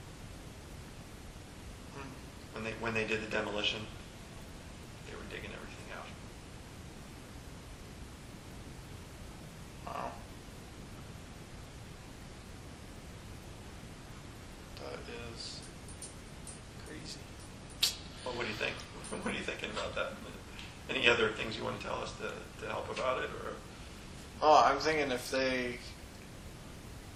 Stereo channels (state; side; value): identical; both; correlation 1.00